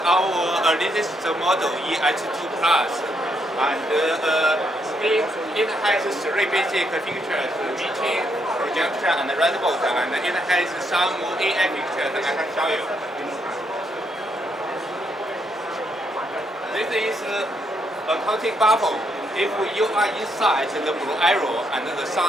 our latest model EH2 Plus, and it has three basic features: meeting, projection, and redbook, and it has some AI features I can show you. This is a counting bubble. If you are inside the blue arrow and the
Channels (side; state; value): both; normal; correlation 0.76